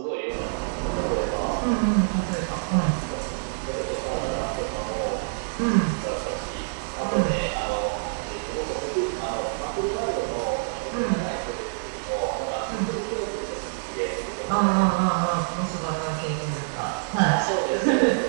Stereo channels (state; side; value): silent; left; digital silence